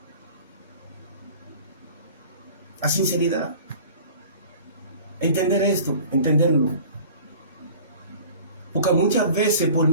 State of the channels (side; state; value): both; inverted; correlation -0.44